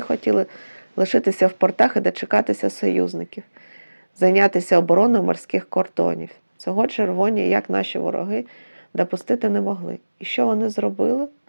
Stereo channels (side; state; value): both; inverted; correlation -1.00